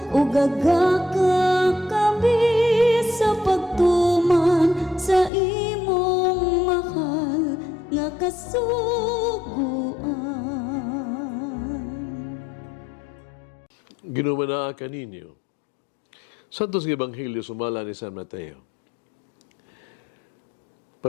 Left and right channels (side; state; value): right; drops out; at 5.3 s